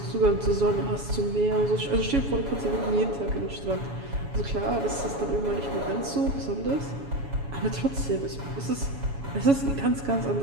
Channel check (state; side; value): late; left; 7.1 ms